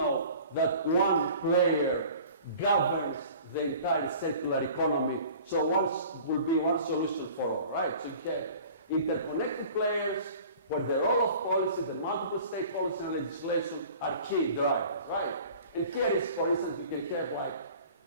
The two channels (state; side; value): inverted; both; correlation -0.45